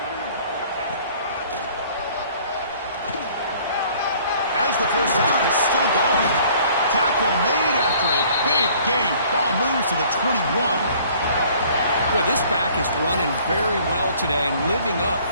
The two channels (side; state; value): both; inverted; correlation -0.55